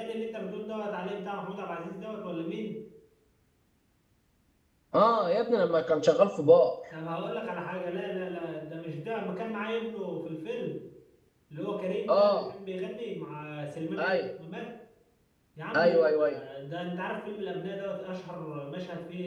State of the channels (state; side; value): identical; both; correlation 1.00